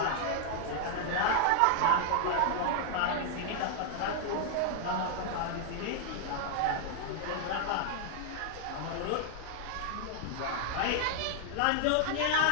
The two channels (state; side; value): different; both; correlation 0.00